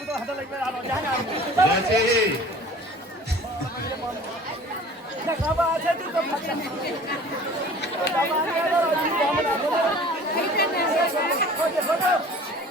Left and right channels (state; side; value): normal; both; correlation 0.46